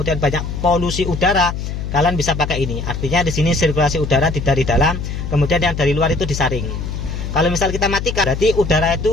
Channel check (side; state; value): left; noise; hum, 5 dB below the sound